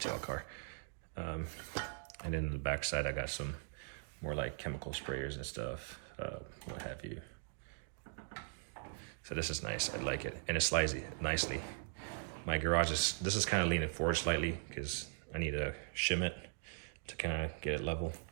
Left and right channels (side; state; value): left; silent; digital silence